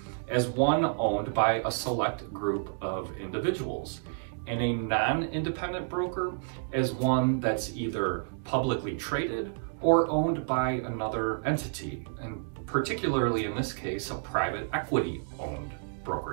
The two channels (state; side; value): silent; left; digital silence